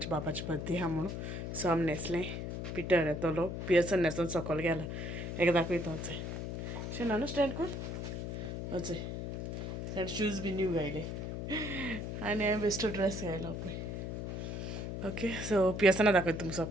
बापाची बर्थडे आहा म्हणून सो आमी न्हेसलें पिटर येतलो पियर्सन न्हेसून सकयल गेला एक दाखयता वचय शेना न्हू स्टँड कोण वचय ताणें शूज बी न्यू घायले आनी हांवें बेश्टो ड्रेस घायलो पळय ओके सो पियर्सना दाखयता तुमकां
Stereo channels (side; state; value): left; noise; hum, 4 dB below the sound